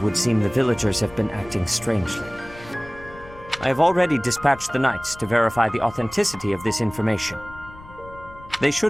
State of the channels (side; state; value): left; noise; rumble, 19 dB below the sound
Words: would seem the villagers have been acting strangely. I have already dispatched the knights to verify the authenticity of this information. They